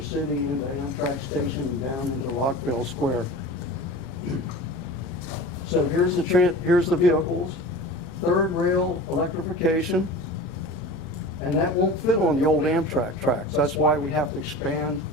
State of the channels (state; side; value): noise; right; rumble, 21 dB below the sound